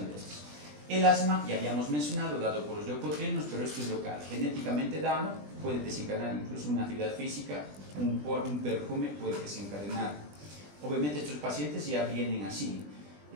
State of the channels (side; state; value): left; late; 20 ms